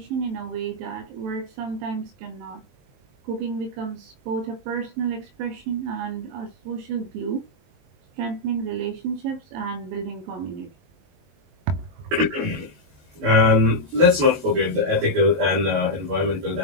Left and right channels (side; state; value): left; late; 22 ms